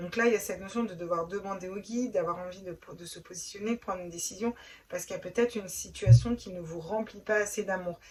là, il y a cette notion de devoir demander au guide, d'avoir envie de se positionner, de prendre une décision, parce qu'il y a peut-être une situation qui ne vous remplit pas assez d'amour.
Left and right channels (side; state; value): both; identical; correlation 1.00